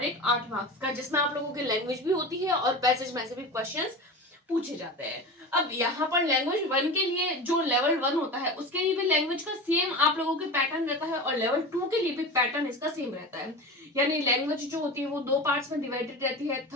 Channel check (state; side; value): normal; both; correlation 0.29